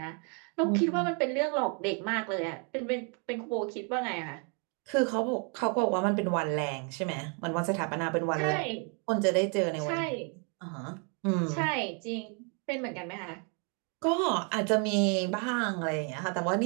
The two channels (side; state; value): left; quieter; 37.2 dB